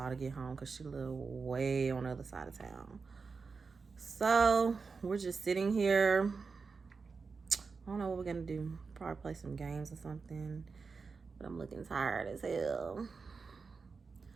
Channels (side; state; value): left; quieter; 4.8 dB